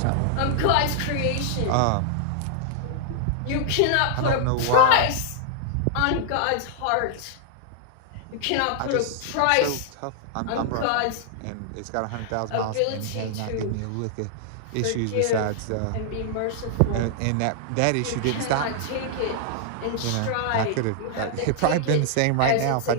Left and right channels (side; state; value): both; different; correlation -0.01